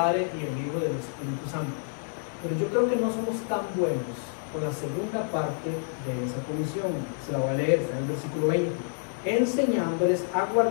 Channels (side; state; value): right; silent; digital silence